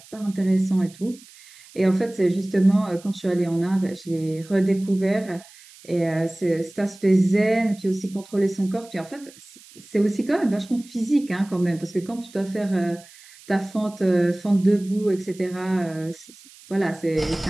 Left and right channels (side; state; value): right; noise; hiss, 23 dB below the sound